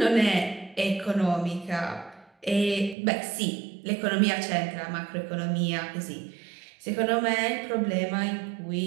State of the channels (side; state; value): left; drops out; at 3.0 s